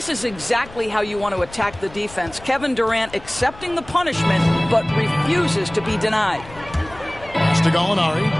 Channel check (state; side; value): noise; left; rumble, 19 dB below the sound